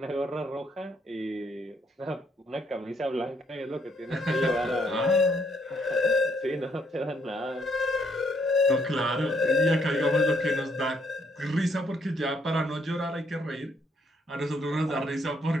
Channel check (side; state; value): both; normal; correlation 0.70